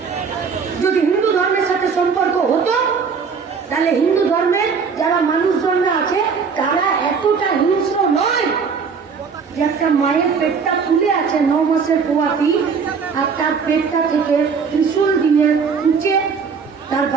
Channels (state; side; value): quieter; left; 5.7 dB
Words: যদি হিন্দু ধর্মের সাথে সম্পর্ক হতো তাহলে হিন্দু ধর্মের যারা মানুষজনরা আছে তারা এতটা হিংস্র নয় যে একটা মায়ের পেটটা ফুলে আছে 9 মাসের পোয়াতি, আর তার পেটটা থেকে ত্রিশূল দিয়ে উঁচে তার